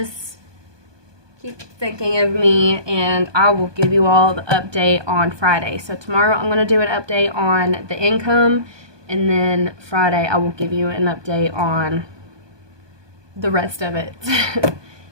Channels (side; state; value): left; late; 1.2 ms